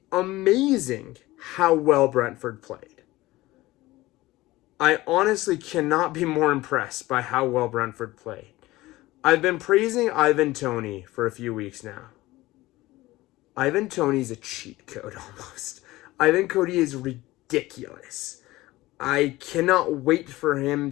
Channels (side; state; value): right; quieter; 18.5 dB